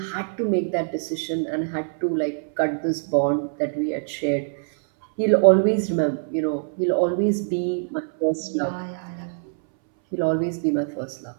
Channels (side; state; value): left; silent; 63 dB below the other